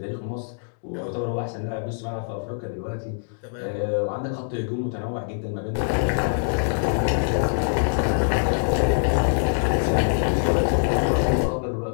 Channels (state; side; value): silent; right; digital silence